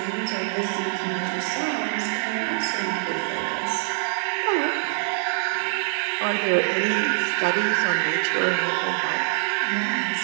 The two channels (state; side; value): silent; left; 62 dB below the other